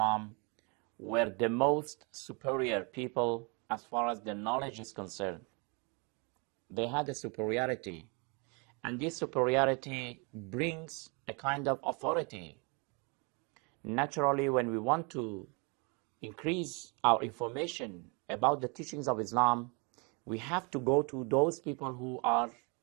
were the most superior people as far as their knowledge is concerned. They had a superiority, and this superiority brings a kind of authority. Naturally, when we want to increase our information about the teachings of Islam, we have to go to those people who are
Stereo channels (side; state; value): left; quieter; 32.4 dB